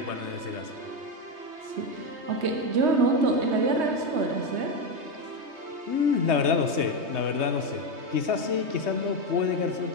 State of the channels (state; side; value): late; left; 3.2 ms